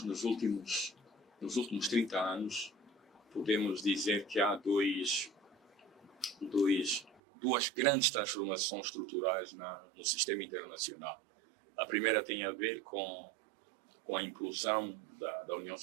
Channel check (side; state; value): left; drops out; at 7.2 s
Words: nos últimos 30 anos, podemos dizer que há duas grandes transformações estruturais no sistema internacional. A primeira tem a ver com a implosão da União